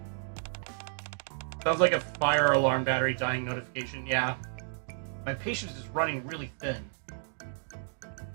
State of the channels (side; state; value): left; silent; digital silence